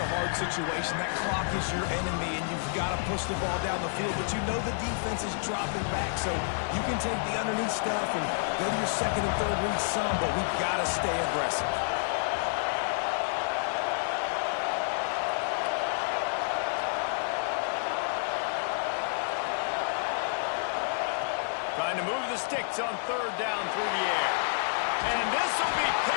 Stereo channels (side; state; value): right; silent; digital silence